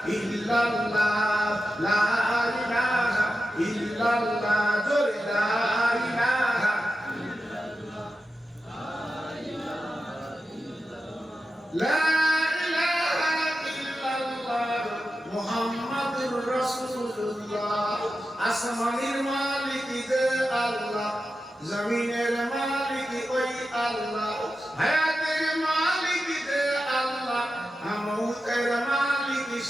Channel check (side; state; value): both; normal; correlation 0.91